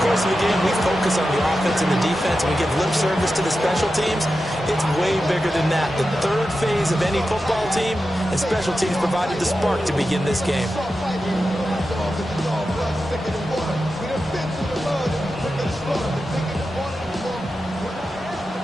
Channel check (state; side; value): normal; both; correlation 0.91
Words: course of the game, we focus on the offense and the defense, and we give lip service to the special teams. It's way bigger than that. The third phase of any football team, and special teams provided the spark to begin this game.